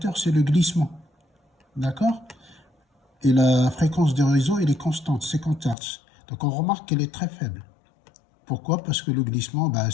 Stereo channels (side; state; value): right; drops out; at 5.8 s